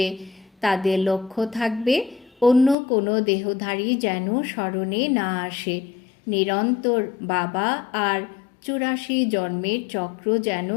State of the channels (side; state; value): right; drops out; at 2.8 s